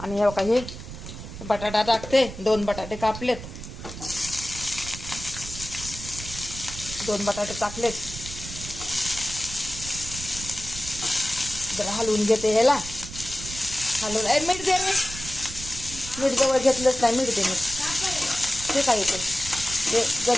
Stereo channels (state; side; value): noise; right; rumble, 11 dB below the sound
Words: हे काही बटाटा टाकते. 2 बटाटे कापलेत. 2 बटाटे टाकलेत. जरा हलवून घेते ह्याला. हलवून मीठ दे रे. मीठ जवळ घेतलंच नाही. मीठ दे. मीठ ते काय येते ते